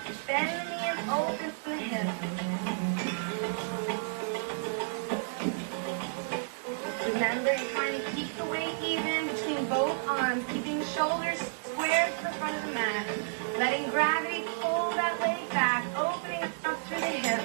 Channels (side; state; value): left; silent; digital silence